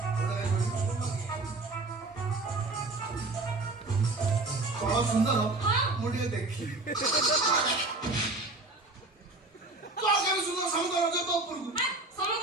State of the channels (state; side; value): quieter; left; 3.2 dB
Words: କଣ ସୁନ୍ଦର ମୁଁ ଟିକେ ଦେଖିଲି କଣ କେମିତି ସୁନ୍ଦର ସମୁଦ୍ର ରଜ ତ ଉପରକୁ